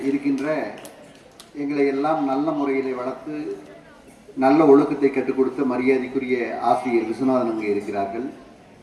இருக்கின்ற எங்களை எல்லாம் நல்ல முறையிலே வளர்த்து நல்ல ஒழுக்கத்தை கற்றுக் கொடுத்த மரியாதைக்குரிய ஆசிரியர் விஸ்வநாதன் அங்கே இருக்கிறார்கள்.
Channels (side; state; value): both; identical; correlation 1.00